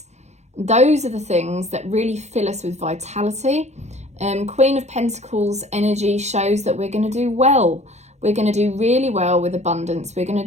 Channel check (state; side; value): late; left; 0.33 ms